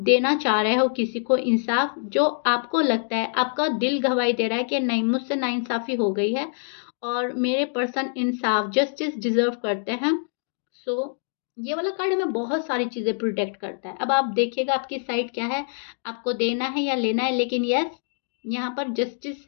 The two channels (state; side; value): silent; right; digital silence